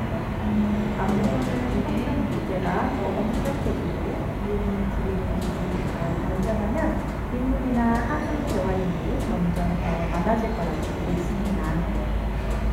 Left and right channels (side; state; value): both; identical; correlation 1.00